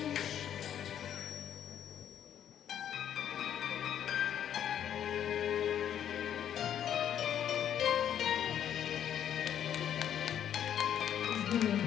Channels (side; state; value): right; quieter; 9.8 dB